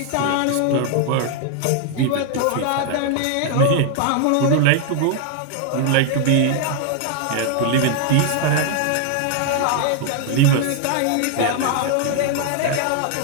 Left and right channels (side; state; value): both; different; correlation 0.00